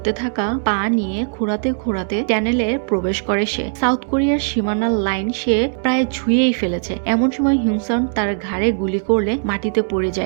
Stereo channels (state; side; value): silent; left; digital silence